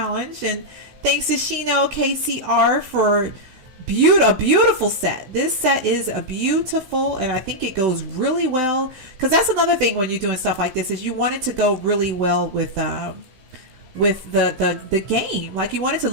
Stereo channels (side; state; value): left; late; 16 ms